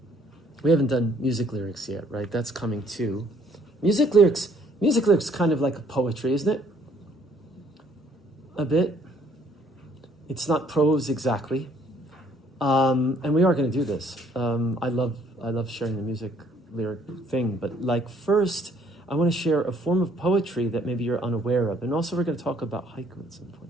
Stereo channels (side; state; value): both; normal; correlation 0.63